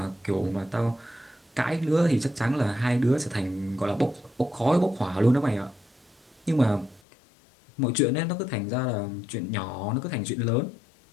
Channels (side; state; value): right; drops out; at 7.0 s